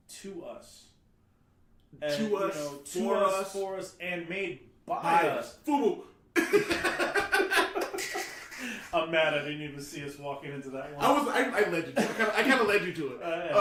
to us, for us, and made by us. FUBU. I'm mad I didn't even see us walking into that one. I led you to it. I kind of led you to it.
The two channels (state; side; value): identical; both; correlation 1.00